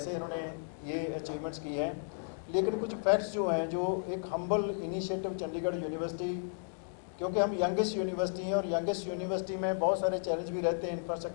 इन्होंने ये अचीवमेंट्स की हैं। लेकिन कुछ फैक्ट्स जो हैं, जो एक हम्बल इनिशिएटिव चंडीगढ़ यूनिवर्सिटी, क्योंकि हम यंगेस्ट यूनिवर्सिटी हैं और यंगेस्ट यूनिवर्सिटी में बहुत सारे चैलेंज भी रहते हैं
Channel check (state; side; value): silent; right; digital silence